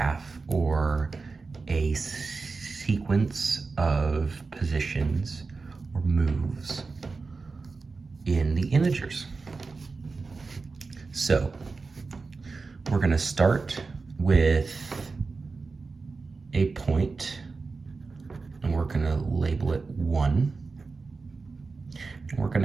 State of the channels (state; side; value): quieter; left; 4.2 dB